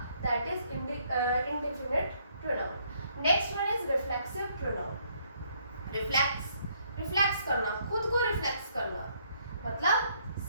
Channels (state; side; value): inverted; both; correlation -0.68